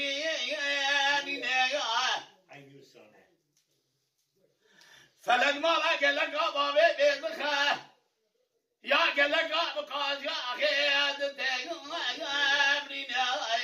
عیوسانه فلک مالا گلک باوی بیدخه یا گلک بقاز یا خیاد تبرینه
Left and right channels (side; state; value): both; identical; correlation 1.00